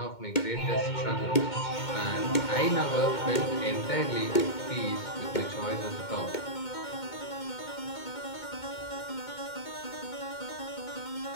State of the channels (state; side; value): late; right; 2.2 ms